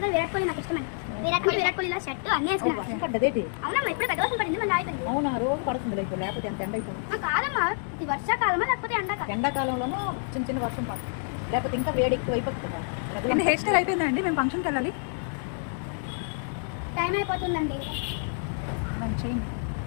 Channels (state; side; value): silent; right; digital silence